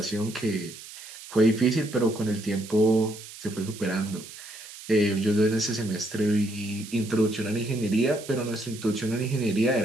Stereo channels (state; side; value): noise; right; hiss, 15 dB below the sound